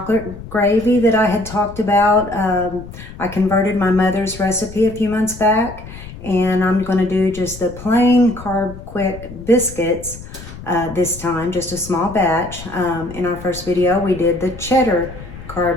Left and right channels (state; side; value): noise; left; rumble, 14 dB below the sound